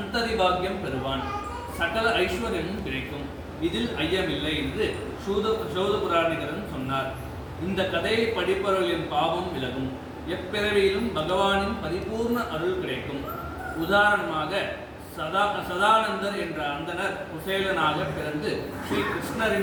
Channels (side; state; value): both; identical; correlation 1.00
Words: பாக்கியம் பெறுவான். சகல ஐஸ்வர்யமும் கிடைக்கும். இதில் ஐயமில்லை என்று சூதபுராணிகரன் சொன்னார். இந்த கதையை படிப்பவர்களின் பாவம் விலகும். எப்பிறவியிலும் பகவானின் பரிபூர்ண அருள் கிடைக்கும். உதாரணமாக சதானந்தர் என்ற அந்தனர் குசேலனாக பிறந்து ஸ்ரீ